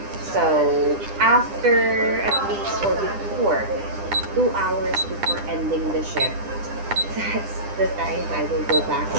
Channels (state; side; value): late; left; 9.9 ms